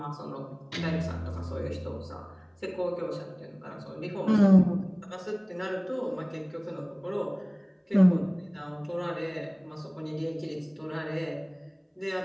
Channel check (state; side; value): identical; both; correlation 1.00